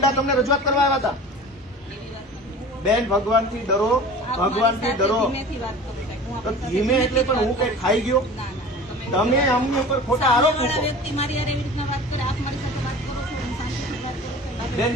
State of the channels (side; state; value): both; normal; correlation 0.38